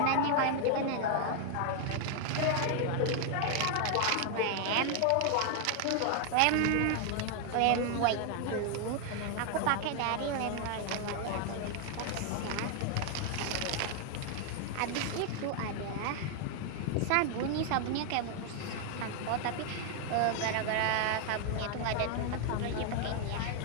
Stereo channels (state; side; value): different; both; correlation 0.00